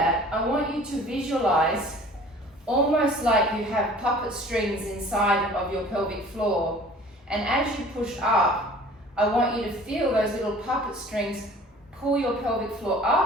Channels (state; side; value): normal; both; correlation 0.47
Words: I want you to visualize almost like you have puppet strings inside of your pelvic floor. And as you push up, I want you to feel those little puppet strings pull your pelvic floor